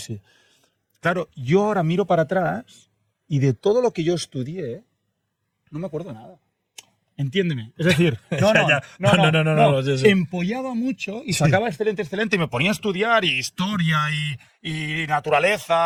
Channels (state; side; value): identical; both; correlation 1.00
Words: Claro, yo ahora miro para atrás y de todo lo que yo estudié, no me acuerdo nada. Entiéndeme. Es decir, no. Sí. Empollaba mucho y sacaba excelente y me ponía a estudiar y historia y